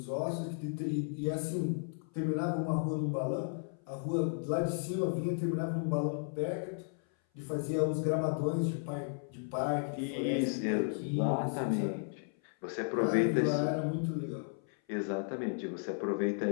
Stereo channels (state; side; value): silent; right; 55 dB below the other